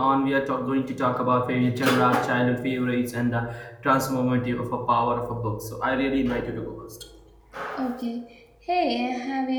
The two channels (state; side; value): identical; both; correlation 1.00